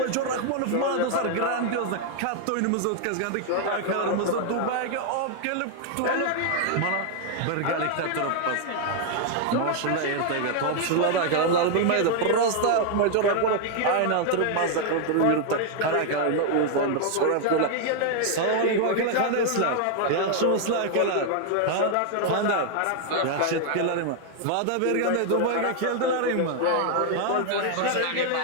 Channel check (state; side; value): different; both; correlation 0.00